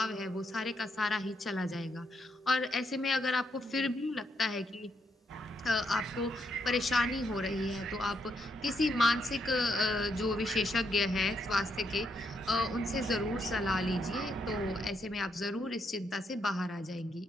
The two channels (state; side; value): normal; both; correlation 0.78